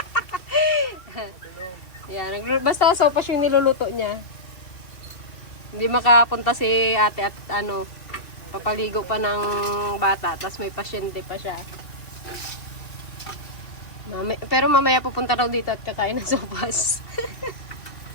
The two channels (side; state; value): right; late; 2.6 ms